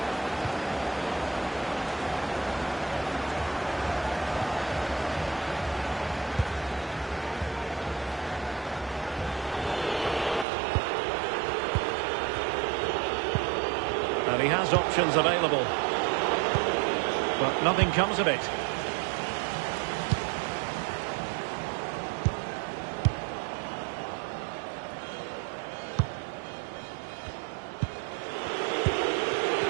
And he has options available. But nothing comes of it.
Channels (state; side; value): drops out; left; at 10.5 s